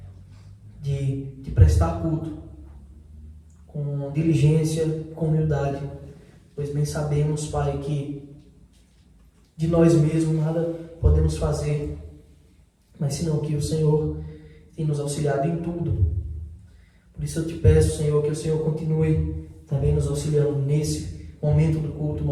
de prestar culto com diligência, com humildade, pois bem sabemos, Pai, que de nós mesmos nada podemos fazer, mas senão que o Senhor tem nos auxiliado em tudo. Por isso eu Te peço, Senhor, que o Senhor continue também nos auxiliando nesse momento do culto,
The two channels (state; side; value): identical; both; correlation 1.00